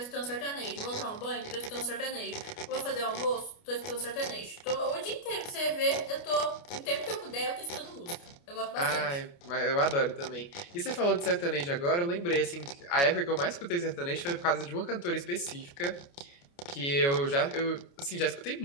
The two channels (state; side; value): late; right; 29 ms